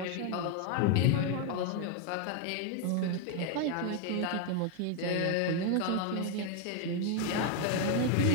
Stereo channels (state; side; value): different; both; correlation 0.01